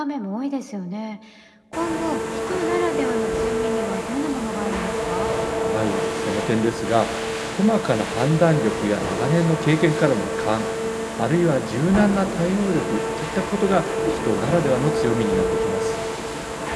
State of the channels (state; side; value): identical; both; correlation 1.00